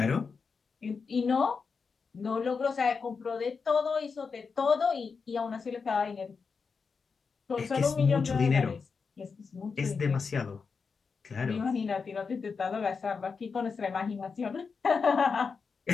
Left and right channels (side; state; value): right; quieter; 5.2 dB